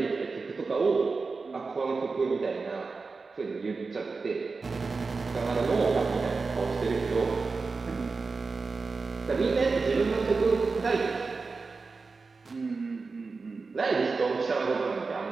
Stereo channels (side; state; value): left; quieter; 4.3 dB